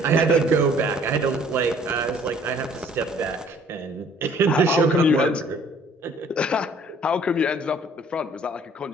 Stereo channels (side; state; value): both; normal; correlation 0.57